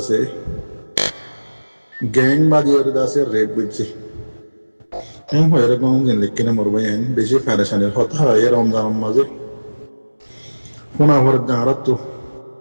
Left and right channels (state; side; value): inverted; both; correlation -1.00